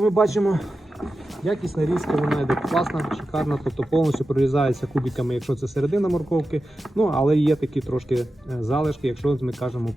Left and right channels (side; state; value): both; normal; correlation 0.92